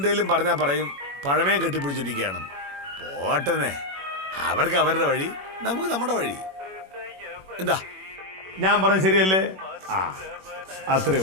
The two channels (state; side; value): late; left; 21 ms